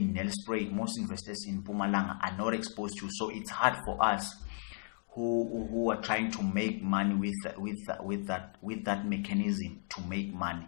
Nelspruit, most investors in Mpumalanga are not exposed to. So it's hard for us who are trying to make money with that mechanism to make money,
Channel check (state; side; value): silent; right; 55 dB below the other